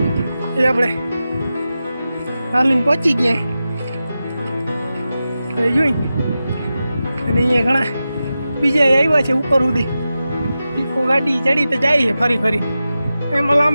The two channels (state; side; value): inverted; both; correlation -0.93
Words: એ આપણે હાલીને પહોંચી ગયા જોઈ. અને અહીંયા ઘણા બીજા આવ્યા છે ઉપર સુધી. ઇકો ગાડી ચડી તો જાય છે ફરી ફરી, એમાં